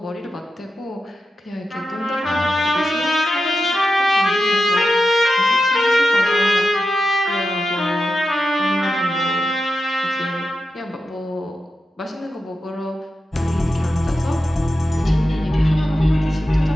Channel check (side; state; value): both; normal; correlation 0.90